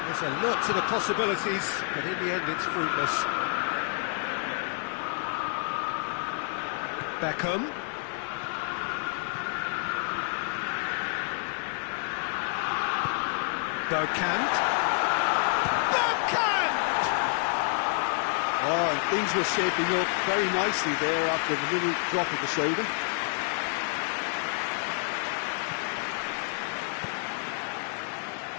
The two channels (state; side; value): silent; right; 57 dB below the other